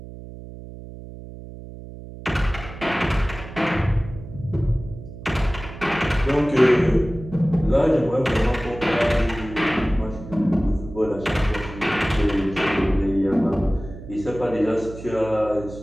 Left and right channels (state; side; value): noise; right; hum, 14 dB below the sound